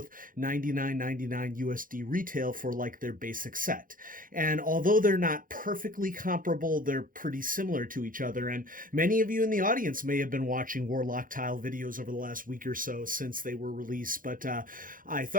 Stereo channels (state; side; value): late; left; 0.40 ms